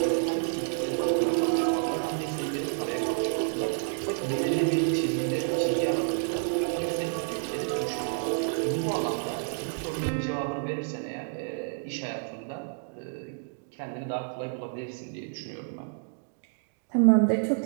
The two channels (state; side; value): silent; left; digital silence